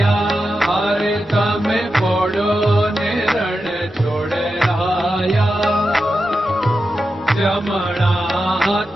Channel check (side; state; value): both; normal; correlation 0.90